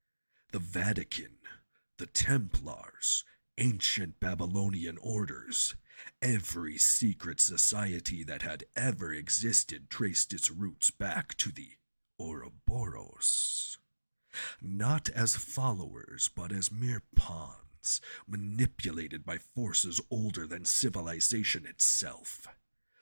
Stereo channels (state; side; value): inverted; both; correlation -1.00